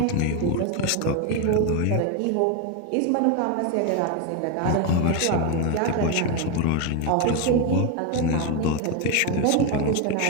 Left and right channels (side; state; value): both; different; correlation 0.02